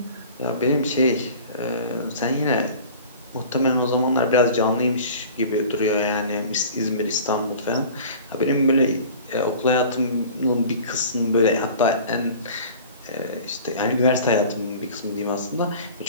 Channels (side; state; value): both; inverted; correlation -0.42